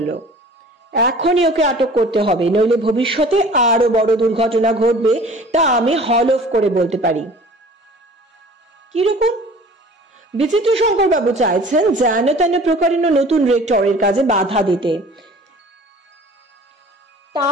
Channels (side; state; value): both; normal; correlation 0.46